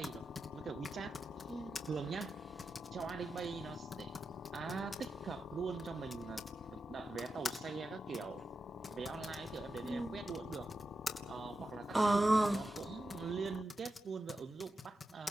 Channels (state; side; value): normal; both; correlation 0.89